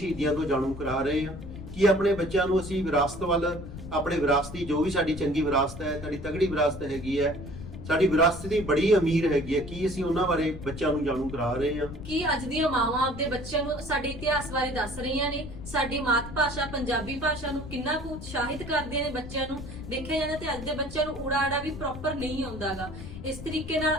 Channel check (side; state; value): left; noise; rumble, 11 dB below the sound